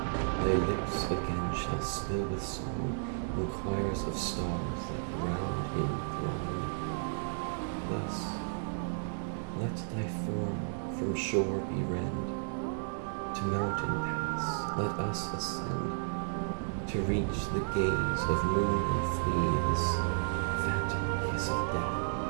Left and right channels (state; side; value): silent; left; digital silence